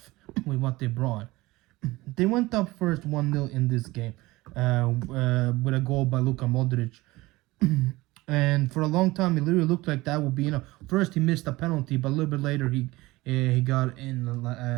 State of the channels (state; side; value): quieter; left; 20.1 dB